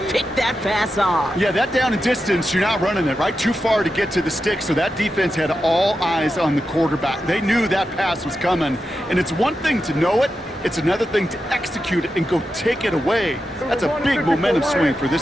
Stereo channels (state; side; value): normal; both; correlation 0.89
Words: pick that pass off. Yeah, that down and distance, you're not running it, right? Too far to get to the stick, so that defense had all eyes on the quarterback. They knew that pass was coming, and it's one thing to know it, it's another thing to execute it and go take it away. That's a big momentum swing for